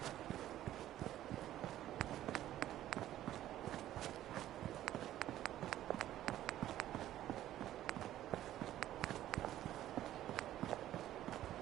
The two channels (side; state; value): left; quieter; 13.1 dB